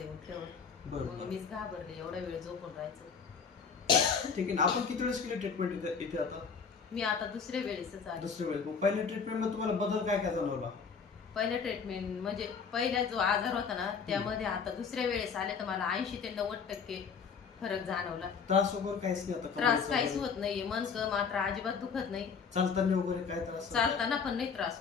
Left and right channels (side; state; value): right; quieter; 5.9 dB